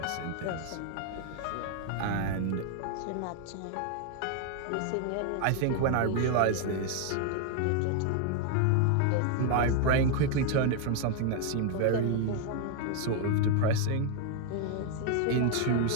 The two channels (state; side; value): different; both; correlation 0.00